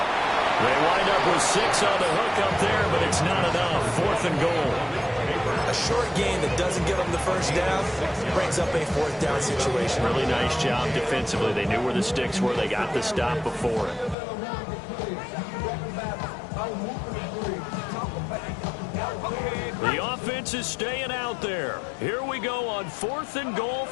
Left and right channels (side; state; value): right; drops out; at 14.2 s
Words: They wind up with 6 on the hook up there, but it's not enough. 4th and goal. A short gain that doesn't get them the first down brings up a fourth down situation. Really nice job defensively. They knew where the sticks were. They got the stop before it. The offense is staying out there. Here we go on 4th and goal